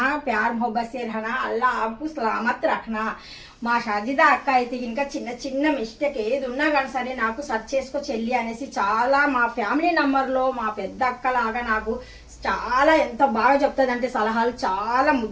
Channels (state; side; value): identical; both; correlation 1.00